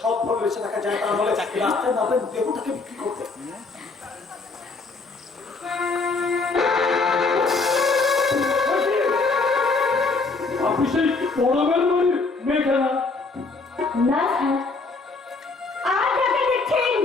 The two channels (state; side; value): quieter; right; 3.9 dB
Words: বেঁচে থাকা যায় তার বলে রাস্তায় নামবেন দেহটাকে বিক্রি করতে আপনি সেই পড়াবেন বাড়ির মেয়েখানা না আজ আগে দেখছেন